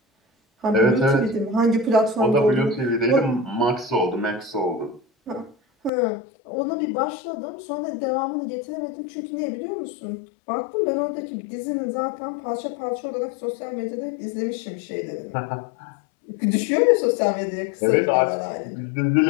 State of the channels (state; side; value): drops out; right; at 5.9 s